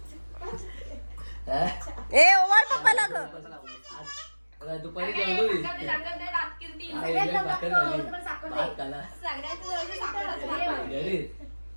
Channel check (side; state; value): both; inverted; correlation -1.00